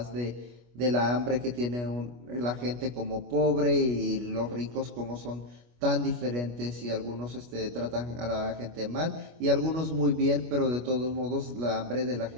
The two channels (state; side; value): late; left; 25 ms